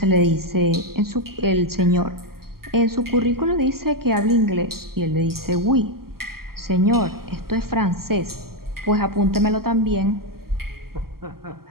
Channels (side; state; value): left; late; 0.93 ms